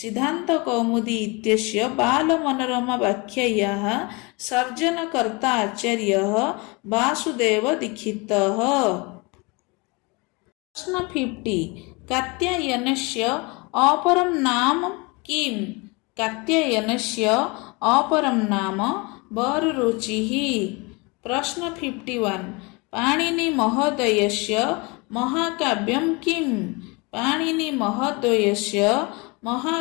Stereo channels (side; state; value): right; quieter; 27.8 dB